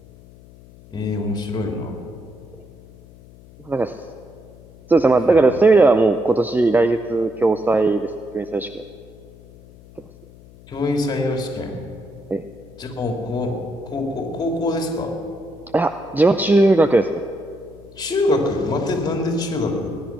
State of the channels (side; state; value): left; noise; hum, 22 dB below the sound